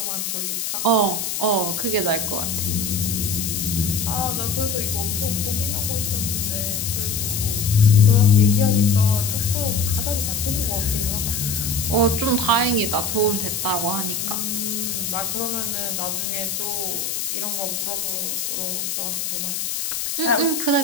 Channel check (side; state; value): left; noise; hiss, 2 dB below the sound